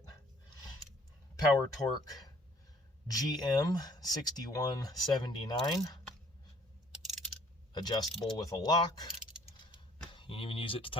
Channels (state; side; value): normal; both; correlation 0.59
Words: Power Torque GM 6179, adjustable with a lock. You can even use it to